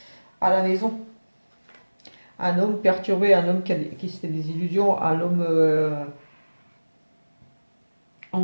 À la maison. Un homme perturbé, un homme qui se fait des illusions, un homme,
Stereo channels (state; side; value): inverted; both; correlation -1.00